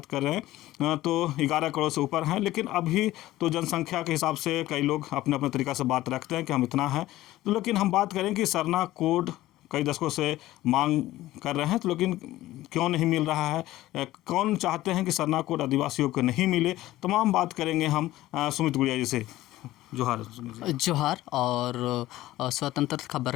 कर रहे हैं तो 11 करोड़ से ऊपर हैं। लेकिन अभी तो जनसंख्या के हिसाब से कई लोग अपने अपने तरीक़ा से बात रखते हैं कि हम इतना हैं। तो लेकिन हम बात करें कि सरना कोड कई दशकों से मांग कर रहे हैं, तो लेकिन क्यों नहीं मिल रहा है, कौन चाहते हैं कि सरना कोड आदिवासियों को नहीं मिले, तमाम बात करेंगे हम सुमित गुड़िया जी से। जोहार। जोहार और स्वतंत्र खबर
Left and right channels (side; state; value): right; quieter; 16.0 dB